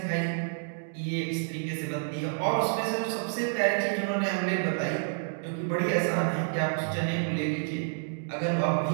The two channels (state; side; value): silent; left; digital silence